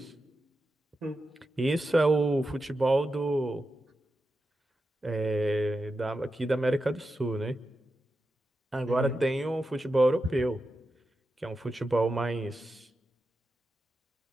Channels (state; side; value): normal; both; correlation 0.90